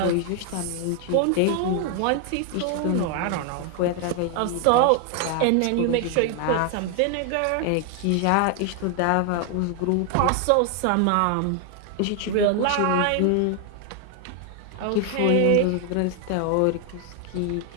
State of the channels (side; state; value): both; different; correlation 0.00